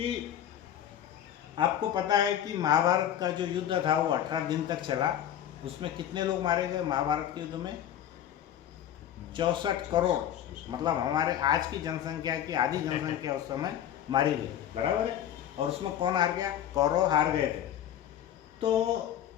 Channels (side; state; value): right; quieter; 10.6 dB